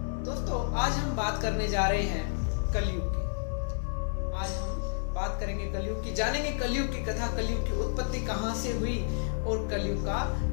दोस्तों, आज हम बात करने जा रहे हैं कलयुग की। आज हम बात करेंगे कलयुग की, जानेंगे कलयुग की कथा, कलयुग की उत्पत्ति कहां से हुई और कलयुग का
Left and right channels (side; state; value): right; silent; 58 dB below the other